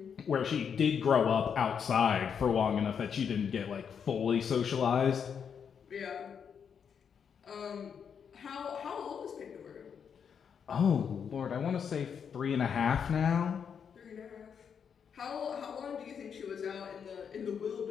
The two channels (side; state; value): right; quieter; 7.2 dB